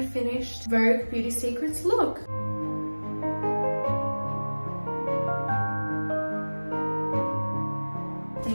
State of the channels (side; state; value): both; inverted; correlation -1.00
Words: finished Vogue Beauty Secrets look.